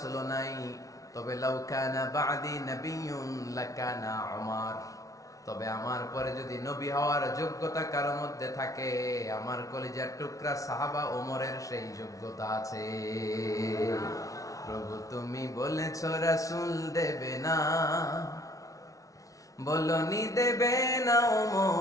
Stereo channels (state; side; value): late; right; 0.17 ms